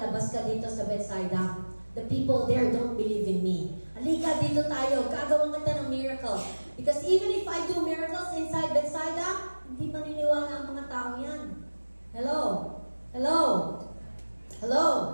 ka dito sa Bethsaida. The people there don't believe in me. Halika, dito tayo. Gagawa kita ng miracle. Because even if I do miracles inside Bethsaida, hindi maniniwala ang mga tao yan. Hello? Hello? Hello?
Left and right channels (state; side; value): inverted; both; correlation -1.00